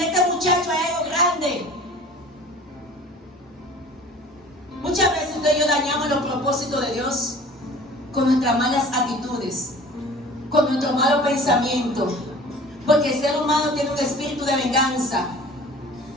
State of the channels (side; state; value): both; normal; correlation 0.44